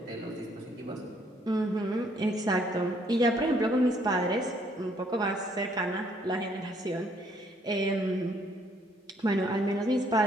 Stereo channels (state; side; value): normal; both; correlation 0.66